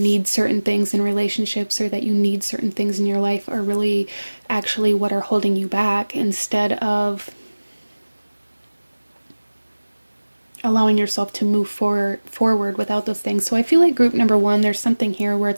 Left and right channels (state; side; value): inverted; both; correlation -1.00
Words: certain things in relationships, or that you need certain things in your life, are really actually what are holding you back, instead of allowing yourself to move forward without those things. So I feel like group number one, there's something here where